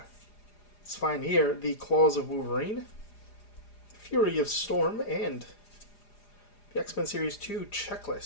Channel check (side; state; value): right; late; 4.9 ms